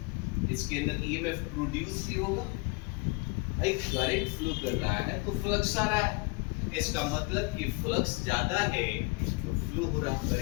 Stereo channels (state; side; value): quieter; right; 26.4 dB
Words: इसके अंदर ईएमएफ प्रोड्यूस भी होगा। भाई करंट फ्लो कर रहा है तो फ्लक्स आ रहा है, इसका मतलब कि फ्लक्स ज्यादा है तो फ्लो हो रहा